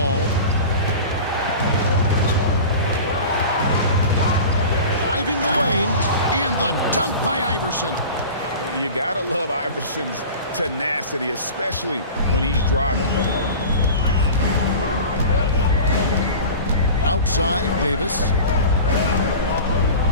Driving the lane, and the dunk by Iverson. You gotta love Iverson's tenacity, especially when he's driving. Outside, Davis.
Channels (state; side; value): inverted; both; correlation -0.35